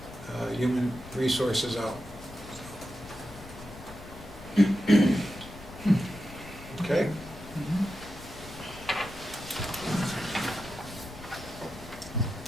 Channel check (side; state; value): left; noise; rumble, 16 dB below the sound